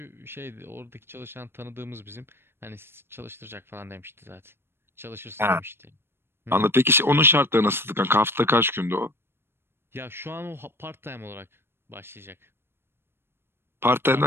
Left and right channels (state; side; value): late; left; 0.11 ms